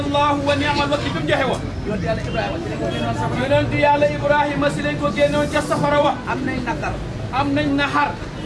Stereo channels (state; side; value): identical; both; correlation 1.00